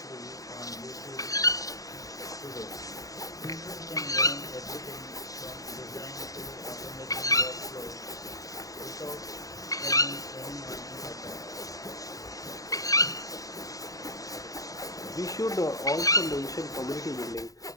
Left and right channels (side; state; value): right; late; 0.17 ms